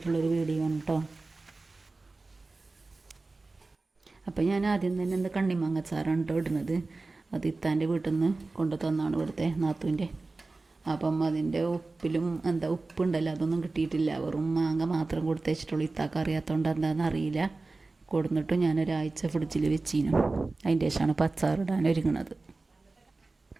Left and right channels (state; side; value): quieter; left; 3.5 dB